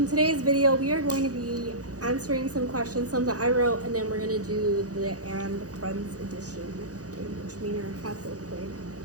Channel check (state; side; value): late; left; 0.67 ms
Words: today's video, we are going to be answering some questions, some that I wrote, and then we're going to do the And Friends edition game, which me and her have both played.